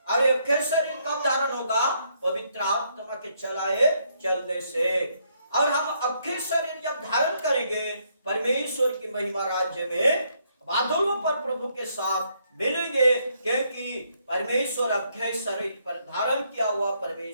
और अक्षय शरीर कब धारण होगा? पवित्र आत्मा के चलने से। और हम अक्षय शरीर जब धारण करेंगे, परमेश्वर की महिमा राज्य में बादलों पर प्रभु के साथ मिलेंगे, क्योंकि परमेश्वर अक्षय शरीर पर धारण किया हुआ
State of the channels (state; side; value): inverted; both; correlation -0.72